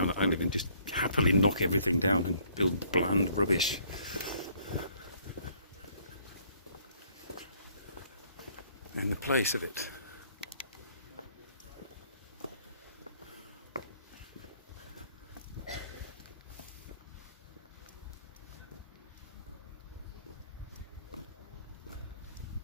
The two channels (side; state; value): both; inverted; correlation -0.63